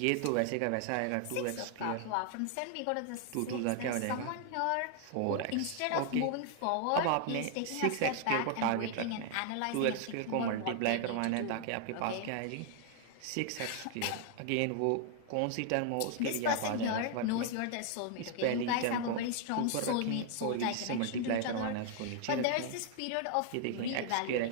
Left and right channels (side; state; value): both; different; correlation 0.00